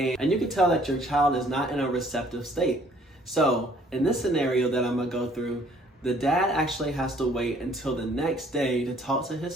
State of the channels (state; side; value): normal; both; correlation 0.59